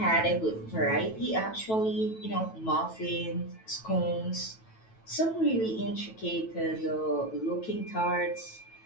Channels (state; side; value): late; right; 9.1 ms